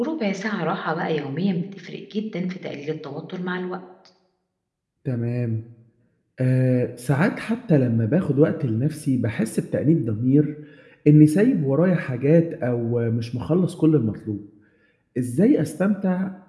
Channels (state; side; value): identical; both; correlation 1.00